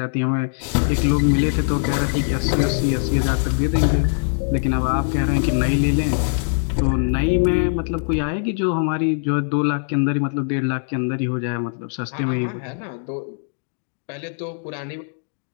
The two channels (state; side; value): silent; right; digital silence